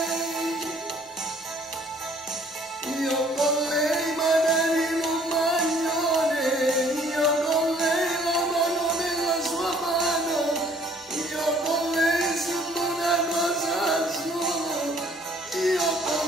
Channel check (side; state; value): both; normal; correlation 0.59